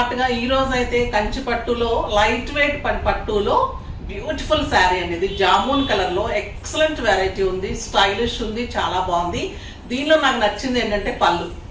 ఈ రోజు అయితే కంచి పట్టులో లైట్ వెయిట్ పట్టులో బ్యూటిఫుల్ శారీ అనేది జామున్ కలర్ లో ఎక్సలెంట్ వెరైటీ ఉంది, స్టైలిష్ ఉంది, చాలా బాగుంది. దీనిలో నాకు నచ్చింది ఏంటంటే పళ్ళు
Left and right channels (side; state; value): both; identical; correlation 1.00